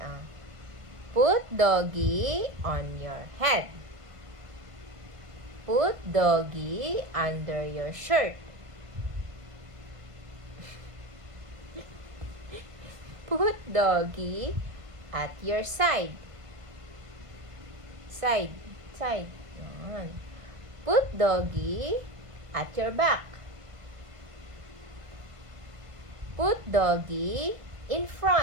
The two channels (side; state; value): left; late; 1.5 ms